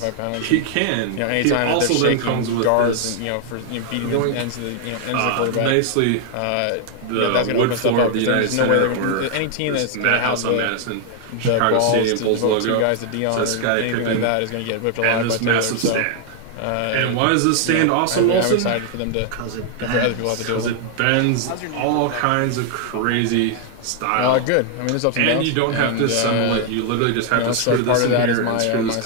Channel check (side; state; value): both; different; correlation 0.00